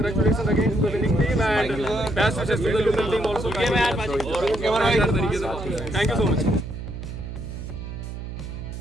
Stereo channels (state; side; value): noise; right; hum, 8 dB below the sound